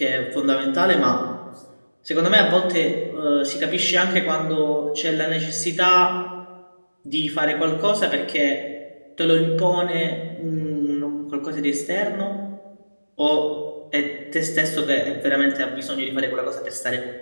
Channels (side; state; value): both; inverted; correlation -1.00